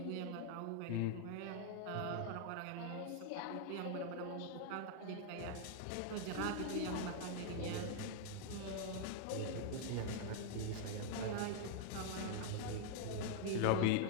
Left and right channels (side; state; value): both; different; correlation 0.00